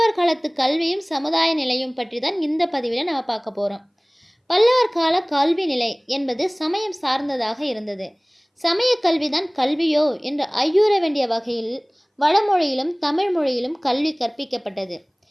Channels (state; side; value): identical; both; correlation 1.00